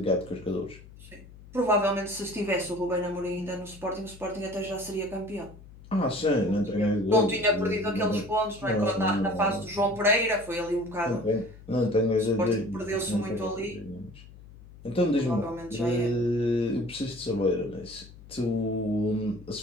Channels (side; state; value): left; noise; hum, 19 dB below the sound